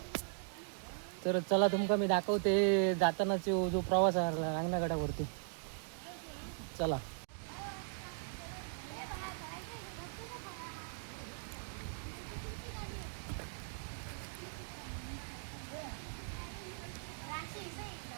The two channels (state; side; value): silent; left; digital silence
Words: तर चला तुमका मी दाखवते जातानाचा जो प्रवास आहे रांगणागडावरती. चला.